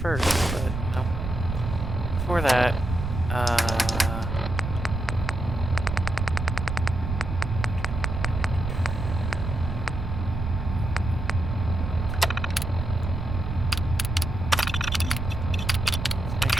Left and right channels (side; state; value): right; noise; rumble, 4 dB below the sound